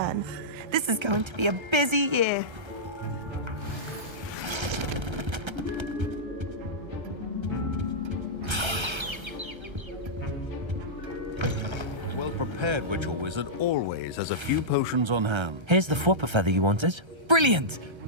This is going to be a busy year. A well-prepared prepared witch or wizard always has a few potions on hand. Here's the flopper feather you wanted. Brilliant!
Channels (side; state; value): left; late; 1.3 ms